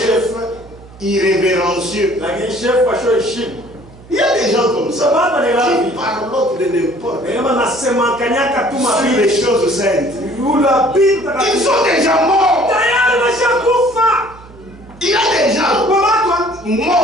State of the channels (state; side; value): noise; right; hum, 22 dB below the sound